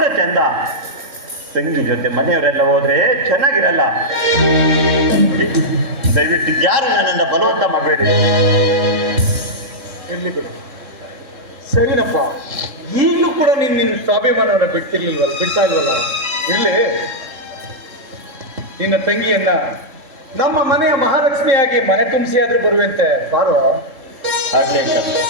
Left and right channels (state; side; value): late; left; 3.7 ms